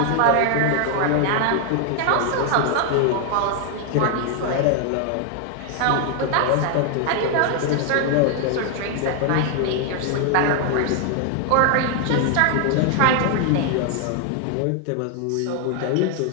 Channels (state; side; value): different; both; correlation 0.00